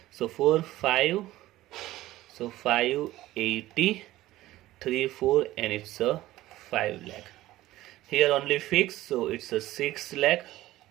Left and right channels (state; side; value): quieter; left; 16.1 dB